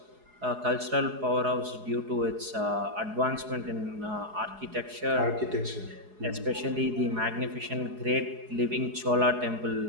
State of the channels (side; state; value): left; late; 4.8 ms